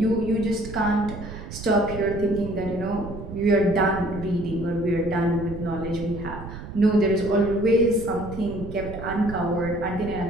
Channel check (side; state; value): right; noise; rumble, 11 dB below the sound